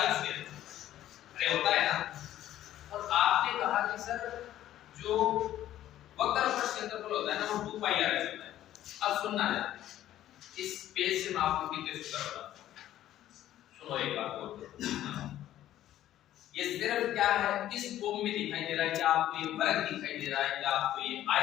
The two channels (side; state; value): right; quieter; 12.8 dB